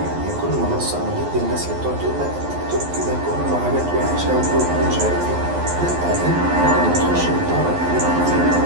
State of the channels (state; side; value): late; left; 11 ms